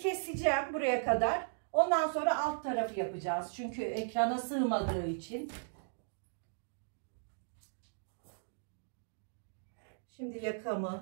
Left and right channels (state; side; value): silent; left; digital silence